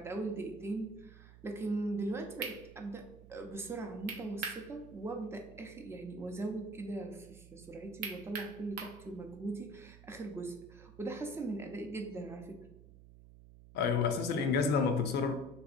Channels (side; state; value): right; noise; hum, 18 dB below the sound